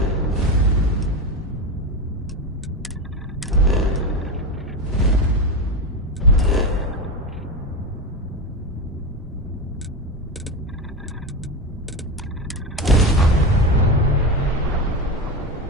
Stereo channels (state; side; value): normal; both; correlation 0.18